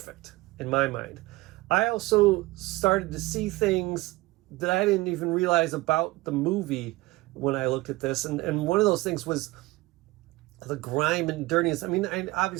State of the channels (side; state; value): left; quieter; 20.7 dB